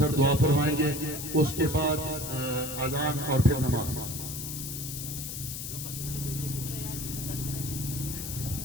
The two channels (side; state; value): left; noise; hiss, 6 dB below the sound